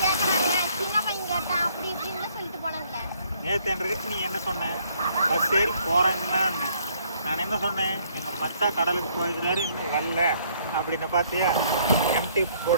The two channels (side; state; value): both; inverted; correlation -0.65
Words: நேற்று நீ என்ன சொன்ன? பஸ் ஏறி போறேன்னா நான் என்ன சொன்னேன்? எங்க மத்தா கடலுக்கு போயிருக்கிறாரு, இன்னும் வரல அப்படின்னு. பார்த்தியா, எம்டி